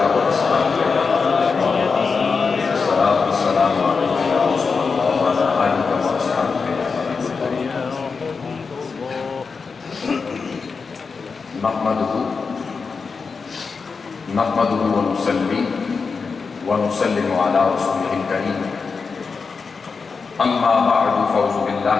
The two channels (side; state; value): right; quieter; 5.0 dB